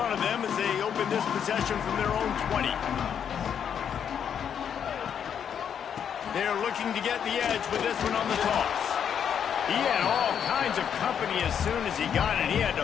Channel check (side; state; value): right; quieter; 8.2 dB